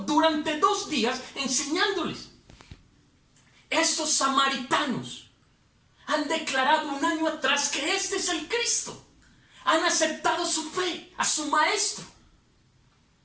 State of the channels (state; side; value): identical; both; correlation 1.00